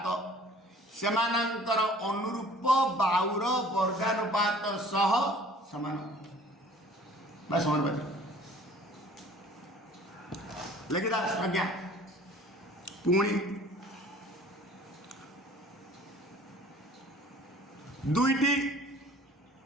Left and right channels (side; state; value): both; normal; correlation 0.50